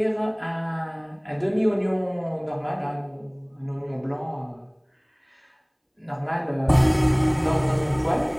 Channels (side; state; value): both; identical; correlation 1.00